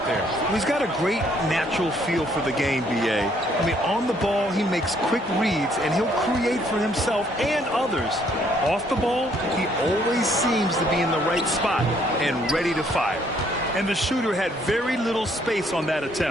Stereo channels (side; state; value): both; normal; correlation 0.66